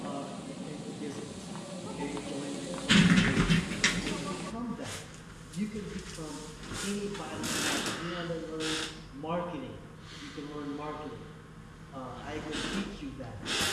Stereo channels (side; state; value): both; identical; correlation 1.00